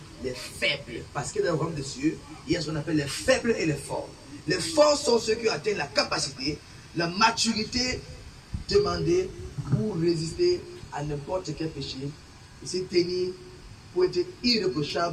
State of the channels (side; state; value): both; identical; correlation 1.00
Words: les faibles. Parce que dans le royaume de Dieu, il y a ce qu'on appelle les faibles et les forts. Les forts sont ceux qui atteignent la capacité, la maturité demandée pour résister à n'importe quel péché et se tenir pour être